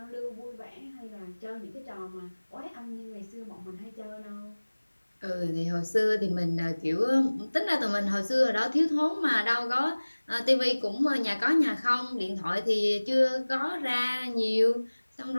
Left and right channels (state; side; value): inverted; both; correlation -1.00